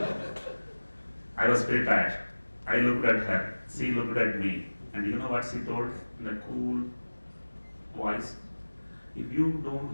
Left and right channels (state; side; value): inverted; both; correlation -1.00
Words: I was prepared. I looked at her. She looked at me. And you know what she told in a cool voice? if you don't